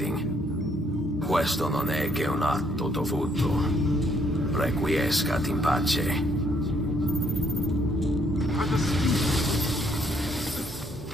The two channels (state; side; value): normal; both; correlation 0.69